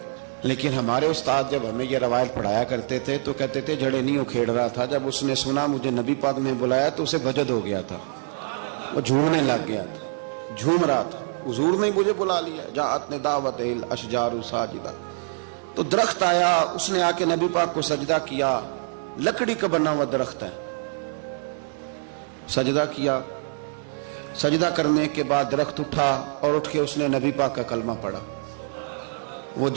لیکن ہمارے استاد جب ہمیں یہ روایت پڑھایا کرتے تھے تو کہتے تھے جڑیں نہیں اکھیڑ رہا تھا، جب اس نے سنا مجھے نبی پاک نے بلایا تو اسے وجد ہو گیا تھا، وہ جھومنے لگ گیا تھا، جھوم رہا تھا، حضور نے مجھے بلا لیا، جاءت لدعوتہ الاشجار ساجدۃ۔ تو درخت آیا، اس نے آ کے نبی پاک کو سجدہ کیا، لکڑی کا بنا ہوا درخت ہے، سجدہ کیا۔ سجدہ کرنے کے بعد درخت اٹھا اور اٹھ کے اس نے نبی پاک کا کلمہ پڑھا۔ وہ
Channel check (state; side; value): silent; left; digital silence